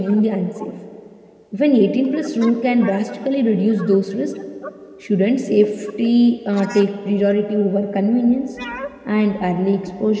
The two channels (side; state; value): both; identical; correlation 1.00